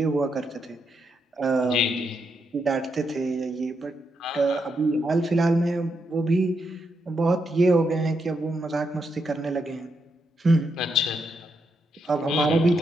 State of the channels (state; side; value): normal; both; correlation 0.81